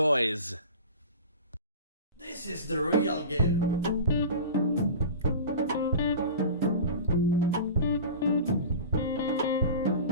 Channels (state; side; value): inverted; both; correlation -0.35